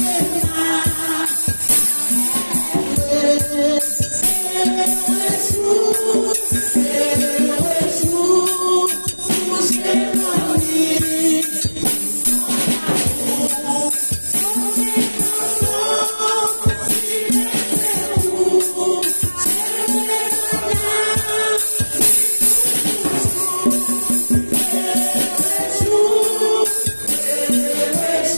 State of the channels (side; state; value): both; inverted; correlation -1.00